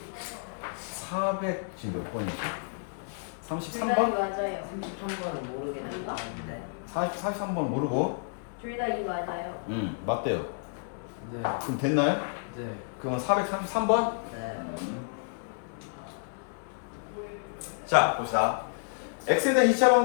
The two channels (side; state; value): right; silent; 58 dB below the other